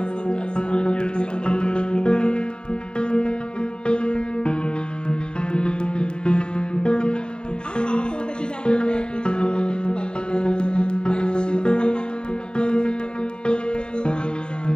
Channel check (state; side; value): late; right; 0.048 ms